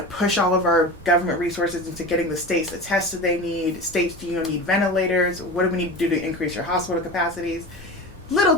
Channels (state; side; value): normal; both; correlation 0.30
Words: push all of our government resources into getting the states the tests that they need. States, do you need ventilators? What do we need to do to increase your hospital capacities? Little